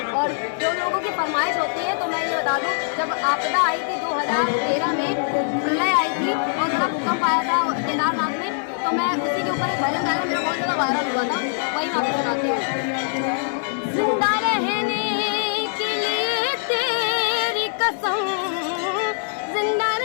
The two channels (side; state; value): right; silent; digital silence